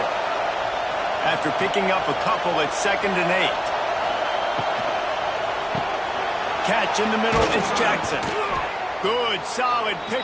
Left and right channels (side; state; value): both; identical; correlation 1.00